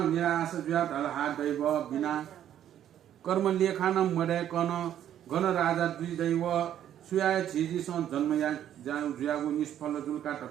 निराश जुया ढल हात दैव बिना कर्म लेखान मडे कन घन राजा दुई दैव सुयाय छिजी सन जन्मया जाउ जुयागु निष्फल जुलका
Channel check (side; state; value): left; quieter; 10.7 dB